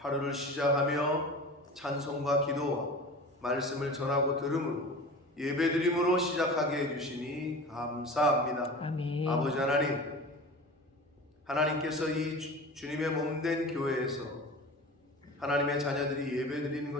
시작하며 찬송과 기도와 말씀을 전하고 들음으로 예배드림으로 시작하게 해주시니 감사합니다. 아멘. 아버지 하나님께서 이 주님의 몸된 교회에서 하나님의 자녀들이 예배드리는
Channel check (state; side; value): normal; both; correlation 0.35